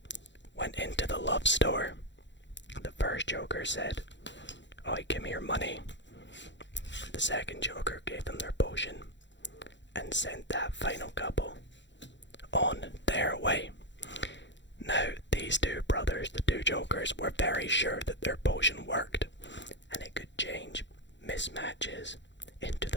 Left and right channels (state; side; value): late; right; 0.53 ms